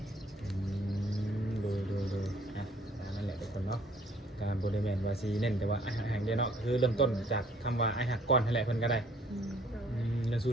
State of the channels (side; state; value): both; normal; correlation 0.59